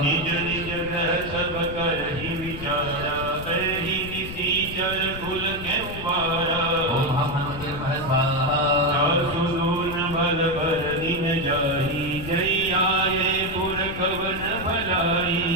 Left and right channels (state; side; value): noise; left; rumble, 10 dB below the sound